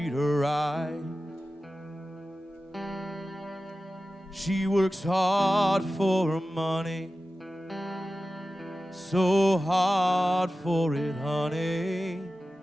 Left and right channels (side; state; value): both; normal; correlation 0.95